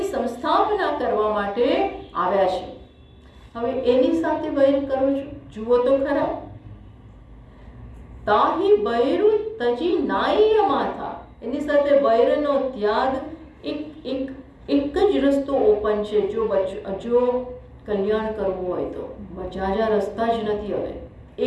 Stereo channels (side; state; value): both; identical; correlation 1.00